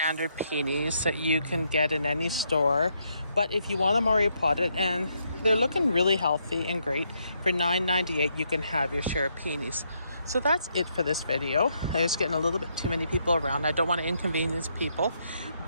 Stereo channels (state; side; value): inverted; both; correlation -0.76